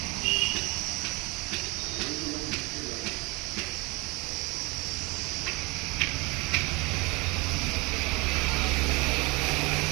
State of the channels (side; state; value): left; quieter; 25.8 dB